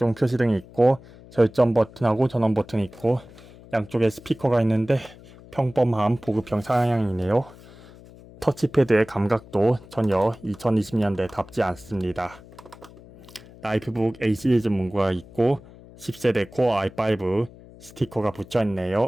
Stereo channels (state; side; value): noise; left; hum, 21 dB below the sound